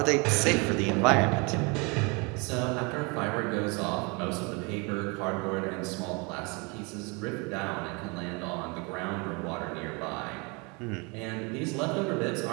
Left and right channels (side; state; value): left; quieter; 30.0 dB